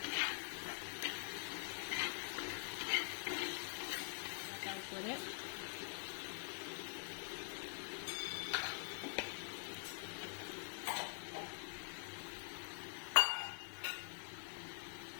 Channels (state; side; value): silent; right; digital silence